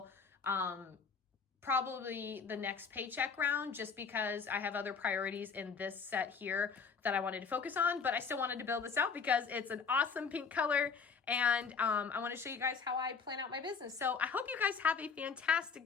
probably the next paycheck round, just because I have other priorities in this set here that I wanted to focus on. But I still wanted to build this out because it's an awesome pink color, and I want to show you guys how I plan out my business. So I hope you guys have a fantastic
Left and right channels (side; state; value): right; quieter; 5.6 dB